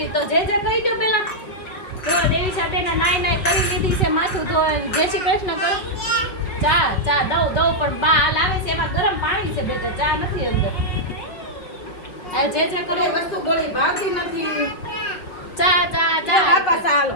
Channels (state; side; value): late; right; 5.3 ms